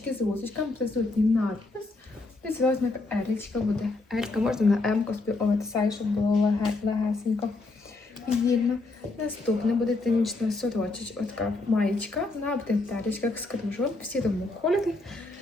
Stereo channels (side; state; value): right; quieter; 3.2 dB